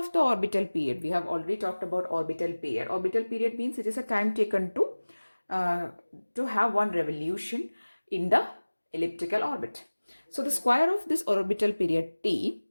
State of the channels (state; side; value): inverted; both; correlation -1.00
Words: the orbital period, we have already talked about orbital period. Orbital period means it is a time taken to have one revolution in the elliptical orbit. So the square of this orbital period t